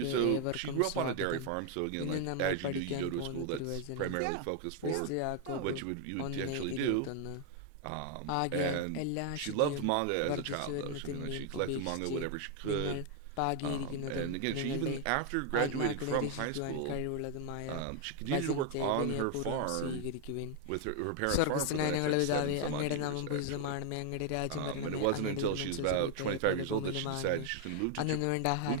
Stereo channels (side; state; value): both; different; correlation 0.00